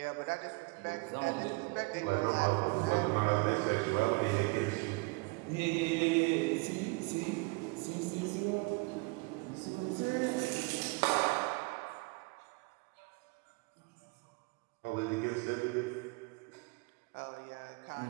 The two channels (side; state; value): left; quieter; 28.5 dB